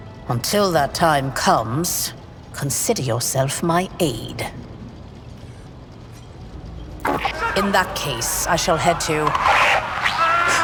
Until that time comes, consider yourself my aide. In that case, I shall head to...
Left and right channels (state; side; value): identical; both; correlation 1.00